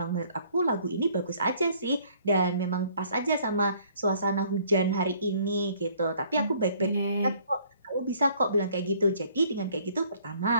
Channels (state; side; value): inverted; both; correlation -0.60